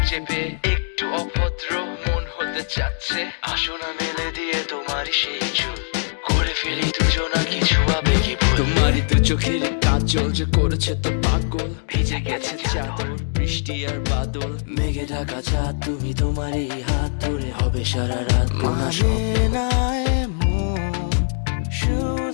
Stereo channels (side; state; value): right; silent; digital silence